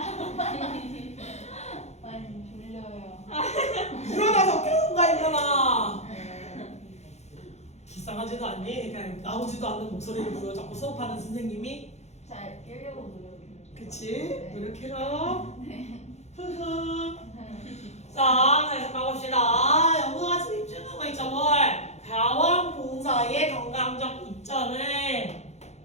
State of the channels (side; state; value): right; late; 0.32 ms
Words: 많이 졸려요. 일어나서 깨운가 일어나. 불쌍하지도 않니? 그냥 나오지도 않는 목소리를 보여 자꾸 수업하는 선생님이. 잘 깨려고 노력해요. 그치? 노력해라. 흐흐. 자, 다시 가봅시다. 영어가 집중하고 거 있죠, 뭘? 가원 봉사의 건강적 이점을